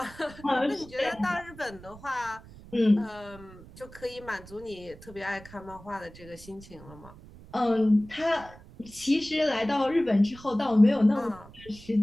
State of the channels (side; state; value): right; noise; rumble, 19 dB below the sound